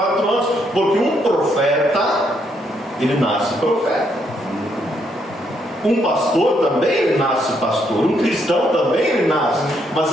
anos, porque um profeta, ele nasce profeta. Um pastor também, ele nasce pastor. Um cristão também, ele nasce.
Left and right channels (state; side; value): normal; both; correlation 0.74